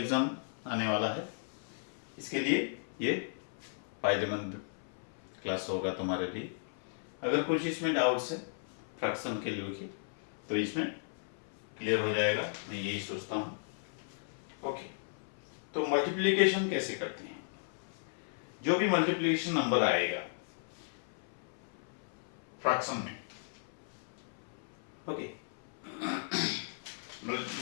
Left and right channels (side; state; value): right; silent; 54 dB below the other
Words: आने वाला है, इसके लिए ये फायदेमंद क्लास होगा तुम्हारे लिए। अगर कुछ इसमें डाउट्स है फ्रैक्शन के लिए की तो इसमें क्लियर हो जाएगा, मैं यही सोचता हूँ। ओके, तो मल्टीप्लिकेशन कैसे करते हैं? जो भी मल्टीप्लिकेशन नंबर आएगा फ्रैक्शन में, ओके,